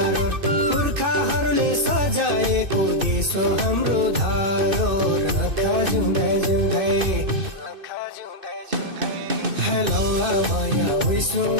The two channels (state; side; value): late; left; 2.6 ms